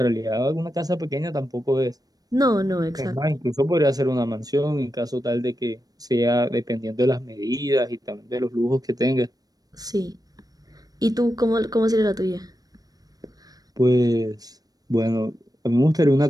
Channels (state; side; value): late; left; 0.18 ms